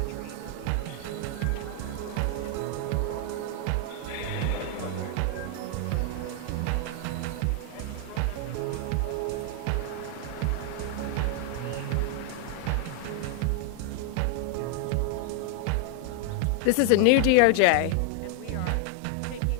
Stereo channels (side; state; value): both; different; correlation 0.00